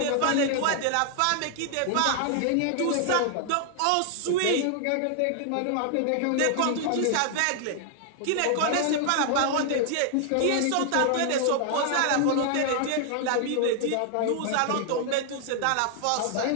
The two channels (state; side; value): different; both; correlation 0.00